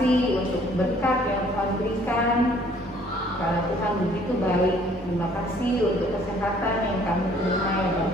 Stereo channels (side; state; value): both; normal; correlation 0.59